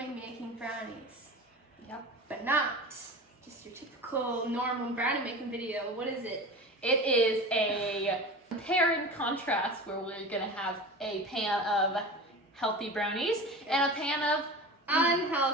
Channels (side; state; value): both; normal; correlation 0.32